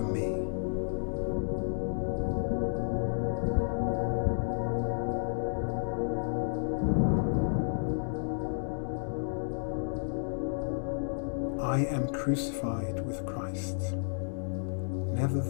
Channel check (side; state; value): right; silent; digital silence